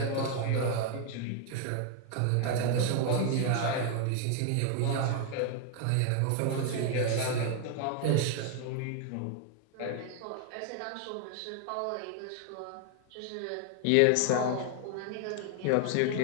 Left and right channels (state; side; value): different; both; correlation 0.00